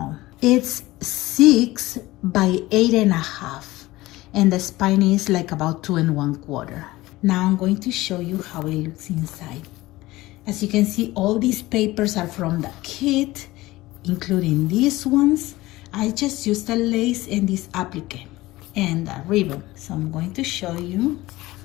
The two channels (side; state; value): right; quieter; 18.6 dB